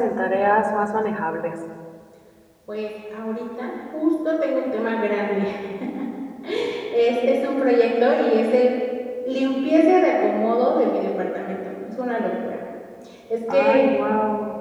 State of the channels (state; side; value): identical; both; correlation 1.00